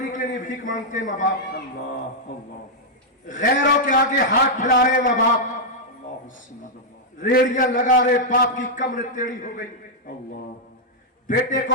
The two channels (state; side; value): normal; both; correlation -0.04